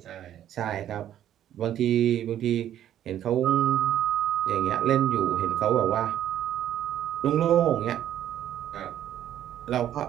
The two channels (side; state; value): left; quieter; 11.2 dB